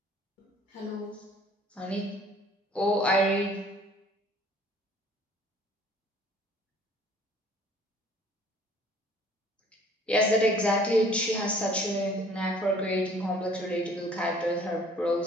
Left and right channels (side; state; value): both; normal; correlation 0.55